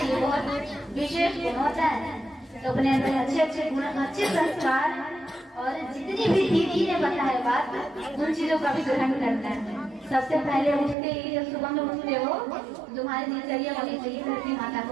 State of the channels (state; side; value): drops out; left; at 11.0 s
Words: ये बहुत विशेष गुण होता है। तो अपने अंदर अच्छे अच्छे गुण, अच्छे संस्कार और जितनी भी दीदी ने बताया बात, उन चीजों का भी ग्रहण करना है। सबसे पहले उठते ही जब सुबह में उठते हो तुम्हारी दिनचर्या होनी चाहिए धरती माता